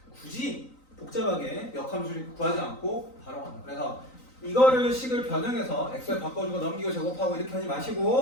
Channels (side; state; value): right; late; 3.9 ms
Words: 굳이 복잡하게 역함수를 구하지 않고 바로 간다. 그래서 이거를 식을 변형해서 xy 바꿔주고 넘기고 제곱하고 이렇게 하지